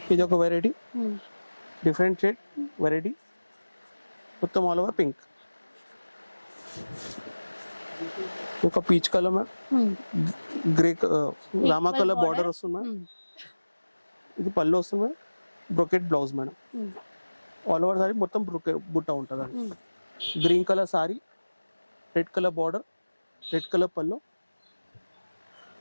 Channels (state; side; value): inverted; both; correlation -1.00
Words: ఇది ఒక వెరైటీ, డిఫరెంట్ షేడ్ వెరైటీ, మొత్తం ఆల్ ఓవర్ పింక్. ఒక peach colour ma'am, grey Rama colour border వస్తుంది మ్యామ్. ఇది పళ్ళు వస్తుంది ma'am, brocade blouse madam. All over sari మొత్తం బుట్ట ఉంటుంది అండి. Green colour sorry, red colour border, red colour పళ్ళు,